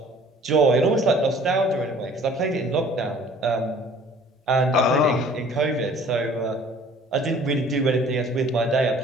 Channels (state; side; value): normal; both; correlation 0.52